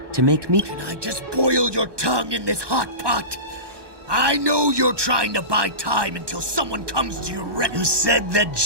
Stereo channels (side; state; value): left; late; 1.2 ms